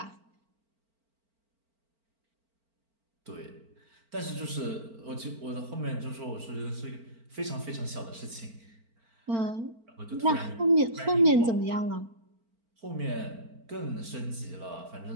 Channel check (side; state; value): left; late; 4.4 ms